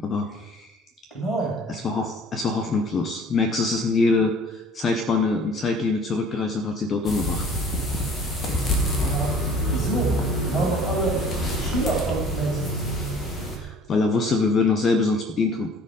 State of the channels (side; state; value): both; normal; correlation 0.50